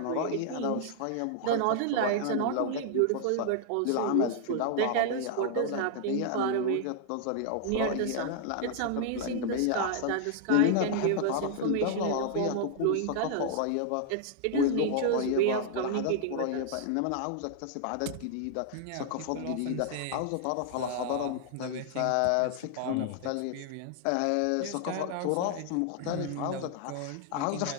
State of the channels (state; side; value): different; both; correlation -0.01